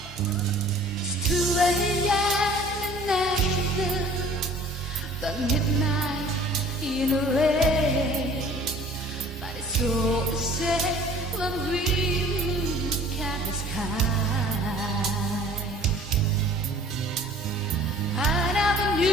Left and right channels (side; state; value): both; normal; correlation 0.50